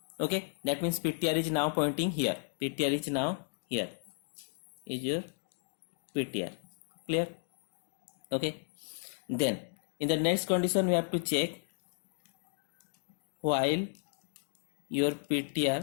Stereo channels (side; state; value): right; silent; digital silence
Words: Okay, that means ptr is now pointing here. Ptr is now here. Is your ptr. Clear? Okay. Then in the next condition we have to check while your